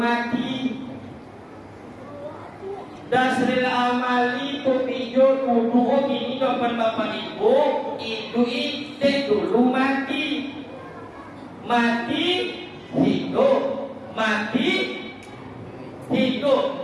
dasril amali tu pijo dulu ini dapat bapak ibu itu dek dulu mati mati hidup mati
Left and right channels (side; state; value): both; identical; correlation 1.00